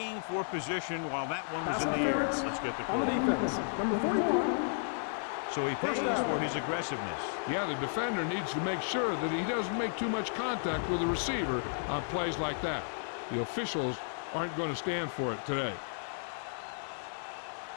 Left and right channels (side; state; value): right; silent; digital silence